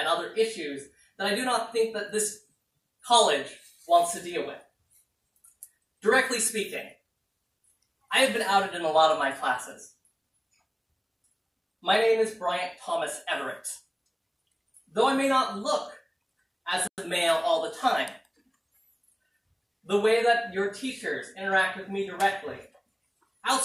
other issues that I do not think that this college wants to deal with. Directly speaking, I have been outed in a lot of my classes. My name is Bryant Thomas Everett. Though I may not look as a male all the time, the way that your teachers interact with me directly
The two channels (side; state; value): both; identical; correlation 1.00